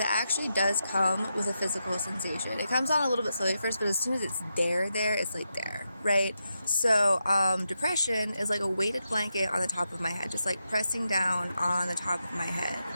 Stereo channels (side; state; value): both; inverted; correlation -0.86